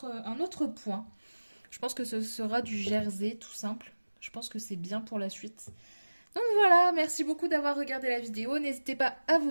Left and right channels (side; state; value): both; inverted; correlation -1.00